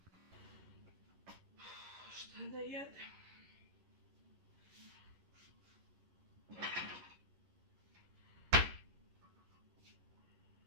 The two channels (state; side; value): late; left; 11 ms